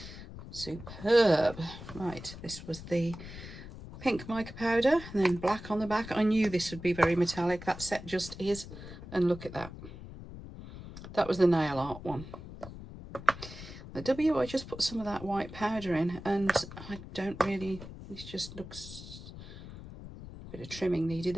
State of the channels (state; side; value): noise; left; rumble, 13 dB below the sound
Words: Superb. Right, this was the pink mica powder and then black on the back. I knew this would be very metallic. That set just is. And look at that. That was the nail art one. The W, I just put some of that white powder in and I don't really, this just looks, a bit of trimming needed